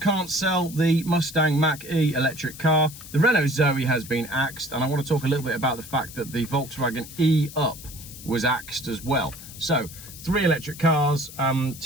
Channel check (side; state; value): left; noise; hiss, 15 dB below the sound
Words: sell the Mustang Mach-E electric car. The Renault Zoe has been axed, and I want to talk a little bit about the fact that the Volkswagen E-Up was axed as well. So, three electric cars,